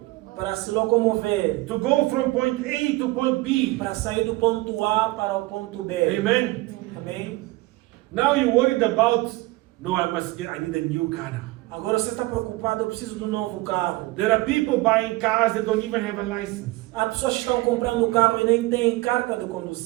Para se locomover. to go from point A to point B. Para sair do ponto A para o ponto B. Amen. Amém? Now you're worried about, no, I need a new car now. Agora você está preocupado, eu preciso de um novo carro. There are people buying cars that don't even have a license. Há pessoas que estão comprando carro e nem têm carta de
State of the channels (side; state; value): left; quieter; 20.6 dB